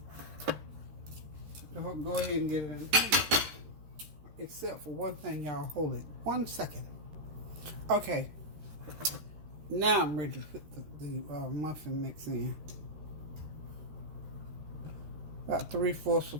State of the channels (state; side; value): late; left; 13 ms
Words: Go ahead and get it in. Except for one thing, y'all. Hold it 1 second. Okay. Now I'm ready to put the muffin mix in. About 3/4 of